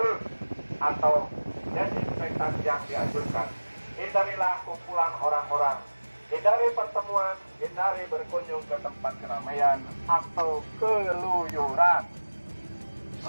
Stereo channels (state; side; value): inverted; both; correlation -1.00